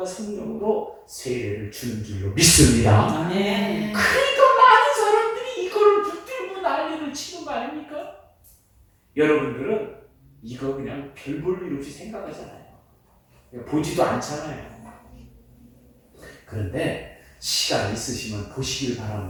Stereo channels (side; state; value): both; identical; correlation 1.00